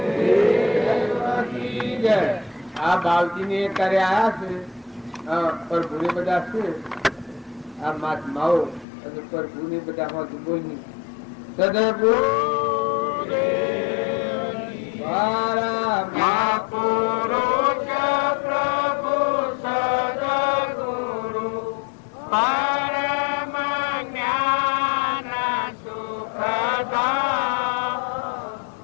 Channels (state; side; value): drops out; right; at 8.8 s